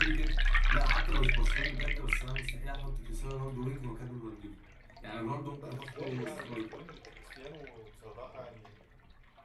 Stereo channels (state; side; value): identical; both; correlation 1.00